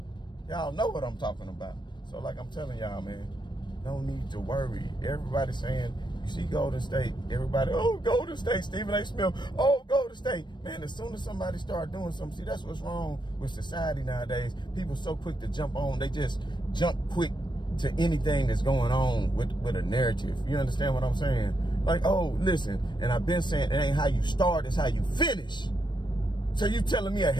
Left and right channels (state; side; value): late; right; 0.22 ms